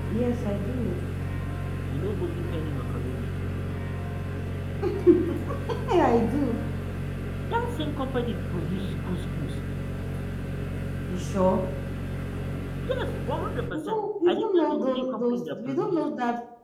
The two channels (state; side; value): identical; both; correlation 1.00